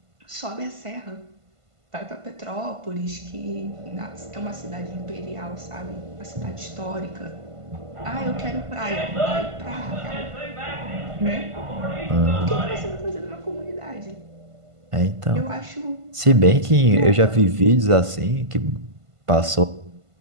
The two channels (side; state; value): left; late; 1.5 ms